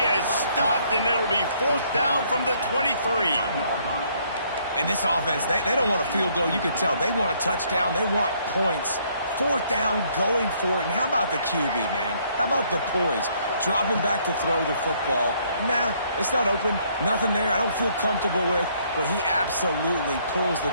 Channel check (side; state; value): both; inverted; correlation -0.66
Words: has stopped, and it'll be fourth down from the 23. And this offense, they don't want a field goal. You can tell. They want a touchdown. They want points. Fourth down, going for it. And how about the QB, man? How about the poise? Dropping back to throw the football. Nah, it's not open. Nothing there I don't feel comfortable with. But he absolutely pulls the